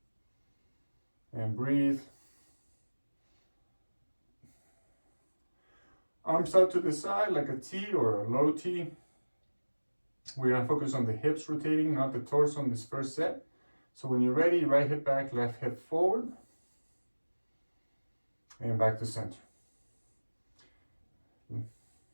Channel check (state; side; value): inverted; both; correlation -1.00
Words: and breathe. Arms out to the side like a T or a low T. We're gonna focus on the hips rotating, not the torso on this first set. So when you're ready, right hip back, left hip forward, and back to center.